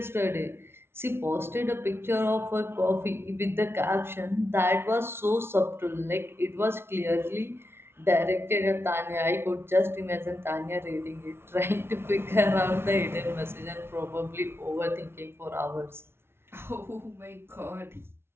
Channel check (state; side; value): late; left; 0.12 ms